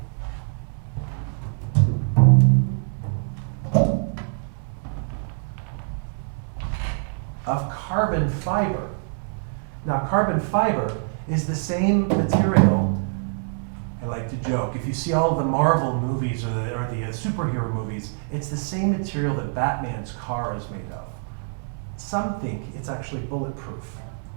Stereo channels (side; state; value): left; silent; 62 dB below the other